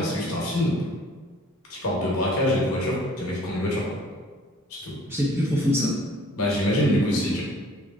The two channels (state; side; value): normal; both; correlation 0.54